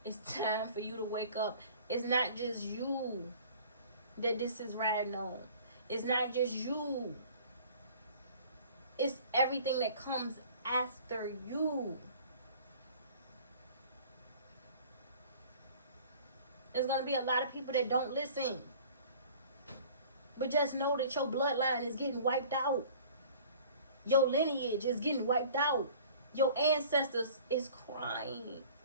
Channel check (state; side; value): inverted; both; correlation -0.48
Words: It's time for you to wake up. It's not just you that this is riding on. It's not just you. It's everything that comes after you. There's going to be a lot of people that don't listen. But just know that your bloodline is getting wiped out. Your lineage is getting wiped out. Your ancestors is crying